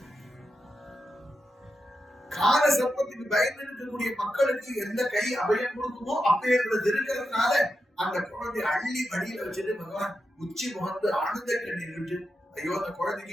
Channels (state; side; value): normal; both; correlation 0.88